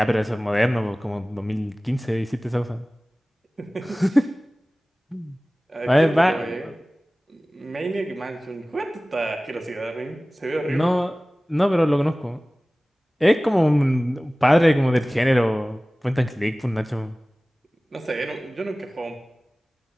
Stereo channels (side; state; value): both; normal; correlation 0.98